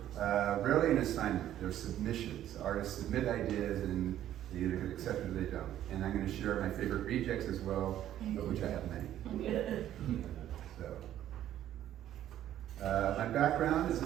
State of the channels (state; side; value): quieter; left; 11.9 dB